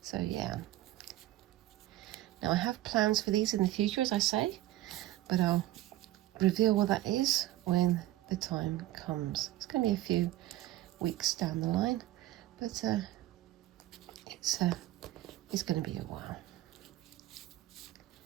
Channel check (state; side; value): quieter; left; 15.3 dB